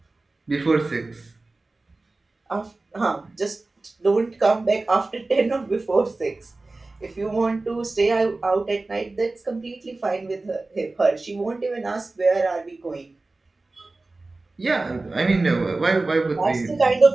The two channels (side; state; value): left; quieter; 3.3 dB